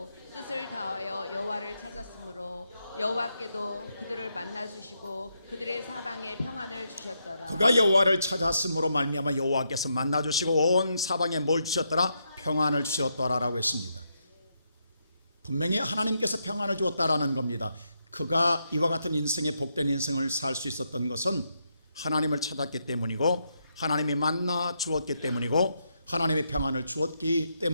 뜻을 다하여 여호와를 찾았으므로 여호와께도 그들을 만나 주시고 그들의 사방에 평안을 주셨더라. 그가 여호와를 찾았으므로 말미암아 여호와께서 만나 주시고 온 사방에 뭘 주셨더라? 평안을 주셨더라라고 했습니다. 분명히 하나님께서 평안을 주었다라는 겁니다. 그가 이와 같은 인생의 복된 인생을 살 수 있었던 것은 하나님을 찾았기 때문이고 하나님이 만나 주었기 때문이고 하나님의 평안을 주었기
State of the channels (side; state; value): both; inverted; correlation -0.80